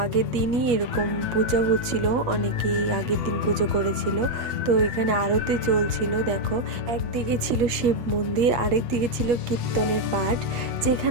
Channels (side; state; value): left; late; 8.4 ms